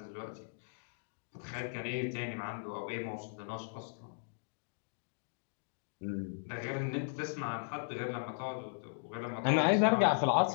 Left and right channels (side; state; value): right; silent; digital silence